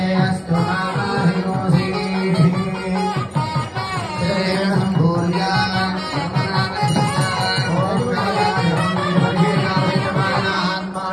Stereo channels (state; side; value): identical; both; correlation 1.00